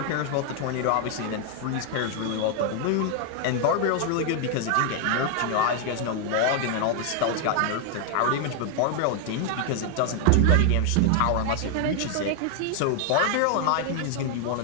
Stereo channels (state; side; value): different; both; correlation 0.00